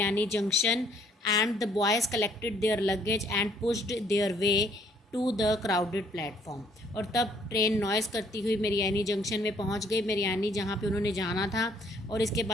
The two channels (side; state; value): both; normal; correlation 0.64